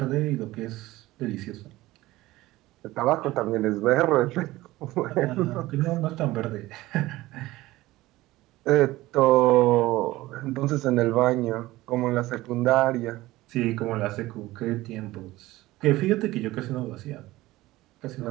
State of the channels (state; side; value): quieter; left; 17.9 dB